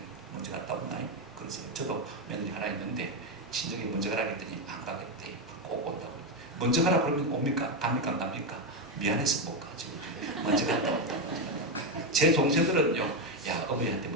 먼저 갔다 온나요? 그래서 저도 며느리 하나 있는데 친정에 먼저 가라 했더니 안 가겠대. 꼭 온다고. 먼저 가라 그러면 옵니까? 갑니까? 안 갑니까? 미안해서 못 가지. 먼저 갔다 온다. 제 동생들은요, 야, 어머니한테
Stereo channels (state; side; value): normal; both; correlation 0.08